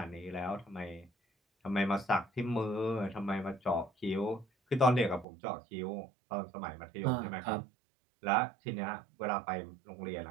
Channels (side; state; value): left; drops out; at 5.2 s